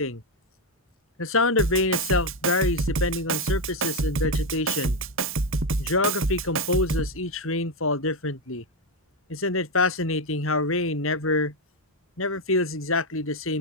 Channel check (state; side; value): normal; both; correlation 0.05